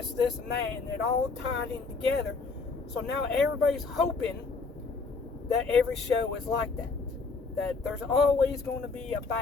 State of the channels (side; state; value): right; quieter; 4.3 dB